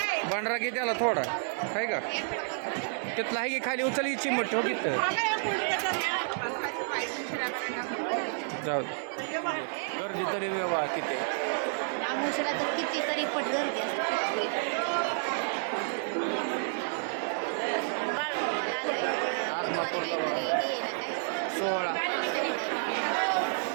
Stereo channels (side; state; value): left; silent; digital silence